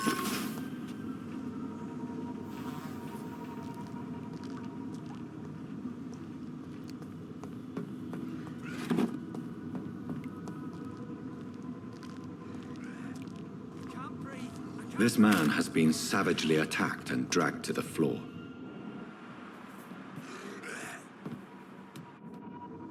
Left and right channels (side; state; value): both; identical; correlation 1.00